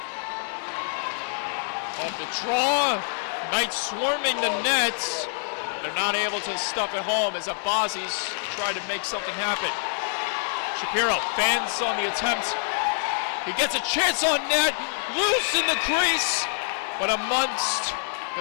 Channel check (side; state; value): right; silent; digital silence